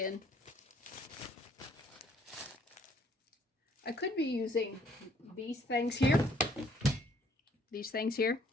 I could be using these things here,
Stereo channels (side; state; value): both; normal; correlation 0.62